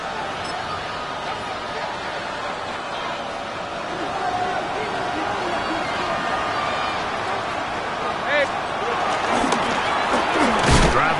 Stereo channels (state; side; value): identical; both; correlation 1.00